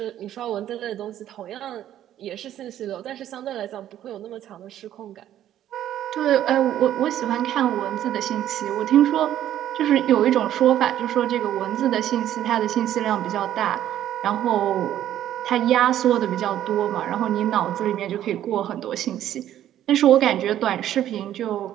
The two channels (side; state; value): left; quieter; 11.8 dB